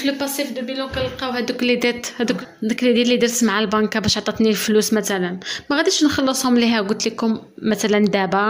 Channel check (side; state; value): both; identical; correlation 1.00